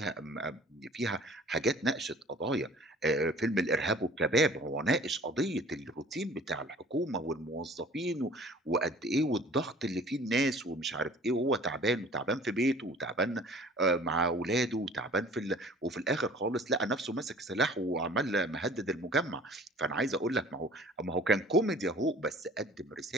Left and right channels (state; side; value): normal; both; correlation 0.49